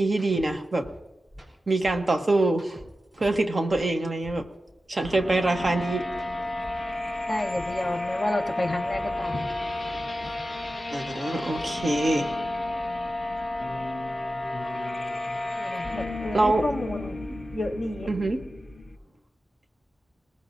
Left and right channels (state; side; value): normal; both; correlation 0.93